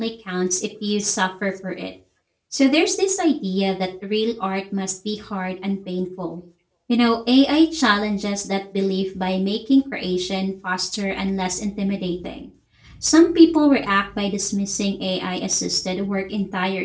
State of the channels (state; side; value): identical; both; correlation 1.00